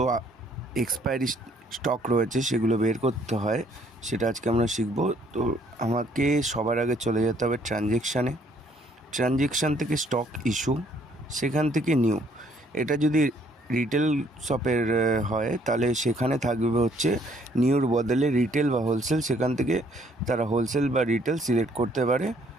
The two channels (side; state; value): both; normal; correlation 0.64